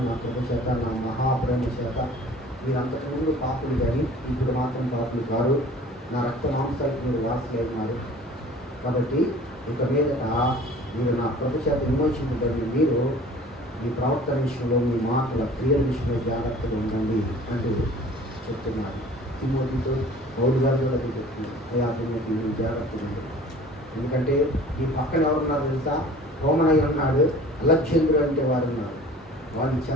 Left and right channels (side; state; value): both; normal; correlation 0.46